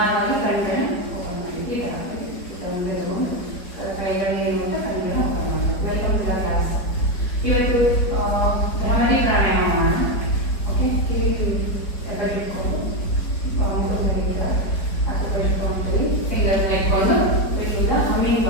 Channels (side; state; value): right; late; 4.6 ms